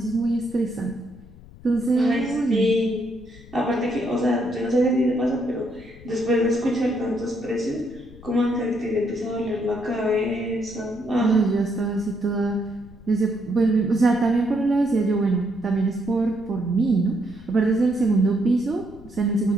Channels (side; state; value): left; noise; rumble, 20 dB below the sound